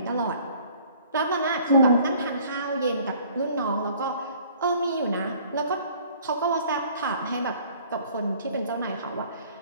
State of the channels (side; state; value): both; inverted; correlation -0.54